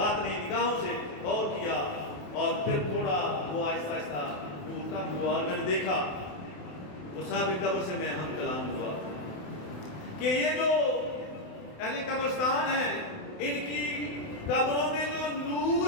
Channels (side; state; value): right; late; 28 ms